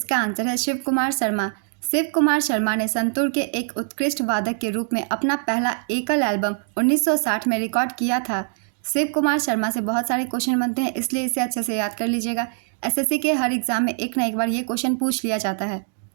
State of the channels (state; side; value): silent; left; 57 dB below the other